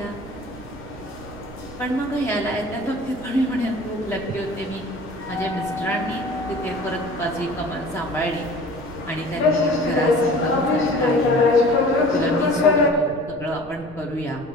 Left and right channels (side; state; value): right; noise; rumble, 18 dB below the sound